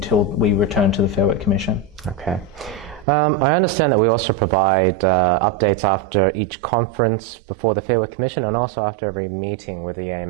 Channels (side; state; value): left; drops out; at 3.1 s